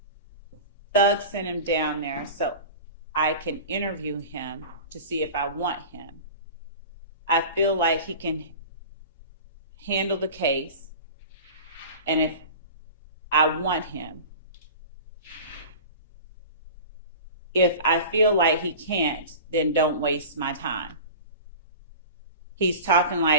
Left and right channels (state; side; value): inverted; both; correlation -0.35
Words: Thug sent him down there so I can interview him to see if I want him. I feel like he can handle the case, and if I want him. If I feel like he can't, then don't waste my time. He's talking